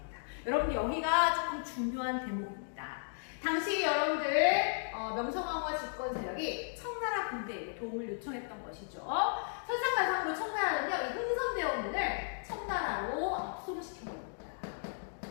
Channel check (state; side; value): silent; right; digital silence